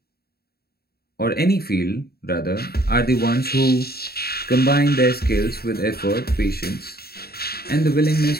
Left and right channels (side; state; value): right; late; 0.45 ms